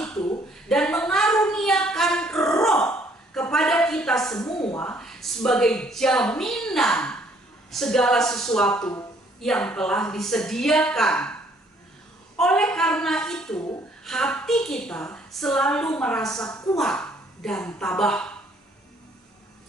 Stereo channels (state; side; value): normal; both; correlation 0.63